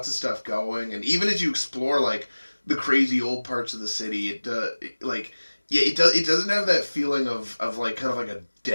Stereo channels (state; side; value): inverted; both; correlation -1.00